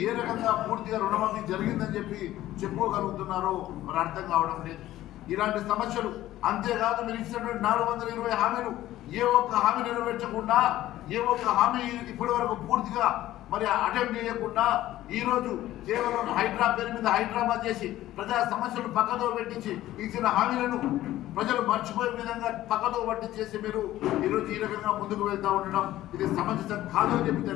ఏ రకంగా పూర్తిగా రుణమాఫీ జరిగిందని చెప్పి చెప్పుకోగలుగుతున్నారో మరి అర్థం కావడం లేదు. ఇలాంటి సమస్యలు అంతేకాదు మీరు ఇచ్చినటువంటి 420 హామీలు ఏ ఒక్క హామీ నెరవేర్చకుండా ఏ ఒక్క హామీ ఇప్పటి వరకు పూర్తిగా మరి అటెంప్ట్ చేయకుండా ఈరోజు కేవలం హైడ్రా పేరు మీద హైదరాబాద్ చేసి ప్రజా సమస్యలు పక్కదో పెట్టించి ఇచ్చిన హామీలను ప్రజలు మర్చిపోయే విధంగా పక్కదో పట్టించేసి మీరు ఈరోజు ఈ రకంగా ముందుకు వెళ్తూ ఉండడం ఇది సమంజసం కాదు అని చెప్పి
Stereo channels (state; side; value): quieter; right; 14.6 dB